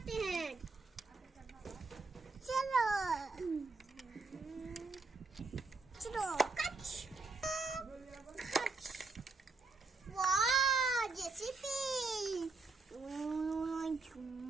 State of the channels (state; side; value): quieter; left; 3.9 dB